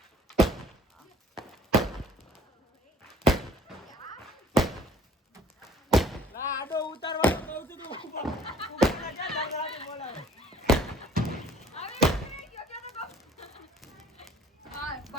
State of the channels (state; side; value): normal; both; correlation 0.55